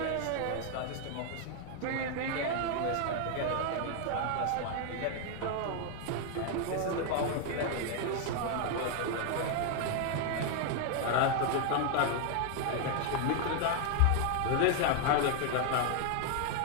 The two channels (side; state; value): both; different; correlation 0.00